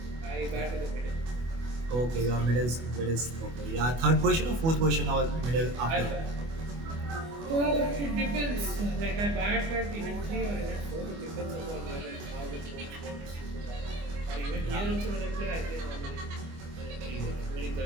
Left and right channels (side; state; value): left; late; 25 ms